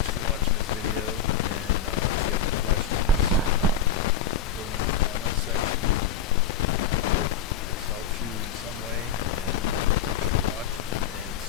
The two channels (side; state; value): right; quieter; 7.1 dB